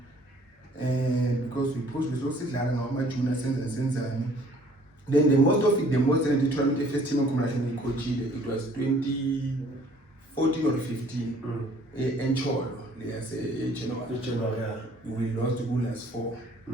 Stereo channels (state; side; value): normal; both; correlation 0.57